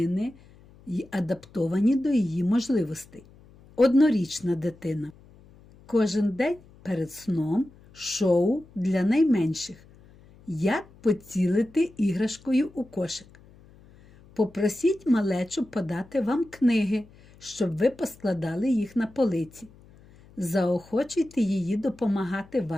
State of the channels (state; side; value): noise; left; hum, 25 dB below the sound